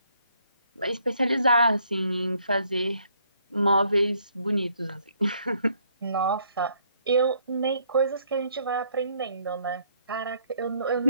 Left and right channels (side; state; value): both; inverted; correlation -0.68